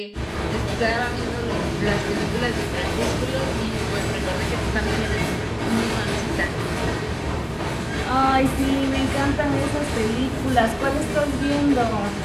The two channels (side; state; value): both; identical; correlation 1.00